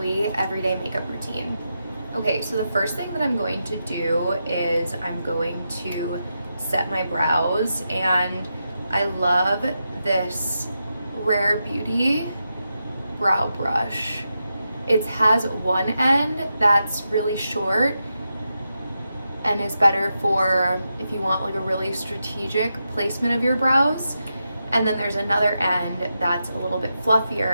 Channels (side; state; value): both; inverted; correlation -0.87